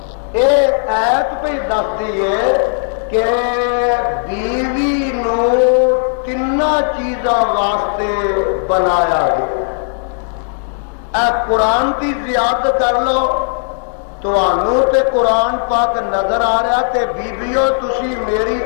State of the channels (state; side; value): silent; right; digital silence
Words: اے ایت پہ دستی ہے کہ بیوی نو تینا چیزاں واسطے بنایا گیا اے قرآن کی زیادت کر لو تو تے قرآن پاک نظر آ رہا تے بیبیو تسی میری